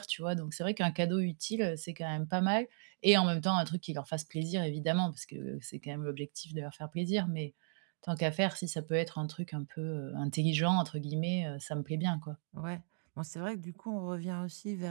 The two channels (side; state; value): left; silent; digital silence